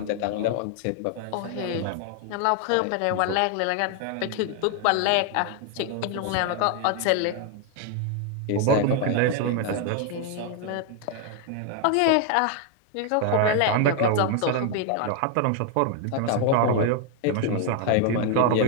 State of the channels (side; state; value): both; different; correlation 0.00